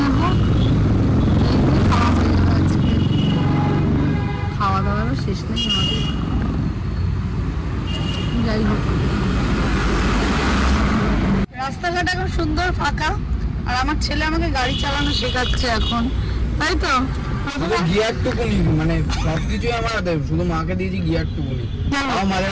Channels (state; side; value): identical; both; correlation 1.00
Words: এই দিয়ে খাওয়া হয়ে যাবে আজকে, খাওয়া দাওয়ারও শেষ নেই আমাদের। যাই হোক, রাস্তাঘাট এখন সুন্দর ফাঁকা, আর আমার ছেলে আমাকে গাড়ি চালানো শেখাচ্ছে এখন, তাই তো? গিয়ারটুকুনি, মানে সবকিছু আমার হাতে, শুধু মাকে দিয়েছি গিয়ারটুকুনি, মাঝে